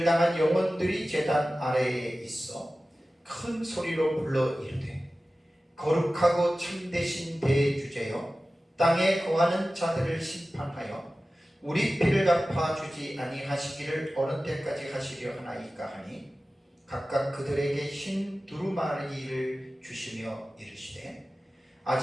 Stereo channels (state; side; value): normal; both; correlation 0.96